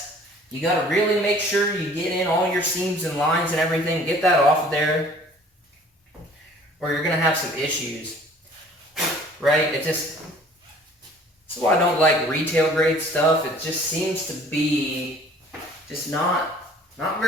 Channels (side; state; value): both; normal; correlation 0.52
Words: You got to really make sure you get in all your seams and lines and everything. Get that off of there. or you're gonna have some issues, right? That's why I don't like retail grade stuff. It just seems to be just not